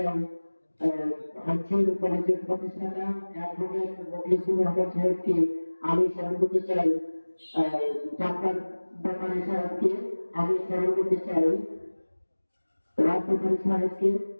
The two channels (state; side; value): inverted; both; correlation -1.00